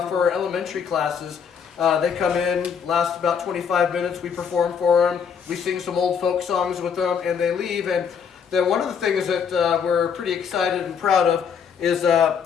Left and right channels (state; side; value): quieter; right; 6.9 dB